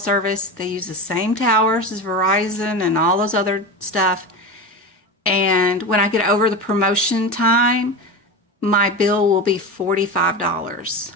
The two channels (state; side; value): normal; both; correlation 0.24